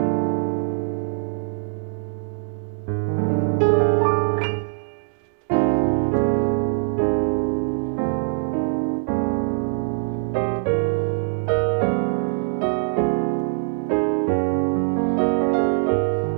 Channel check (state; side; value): silent; left; digital silence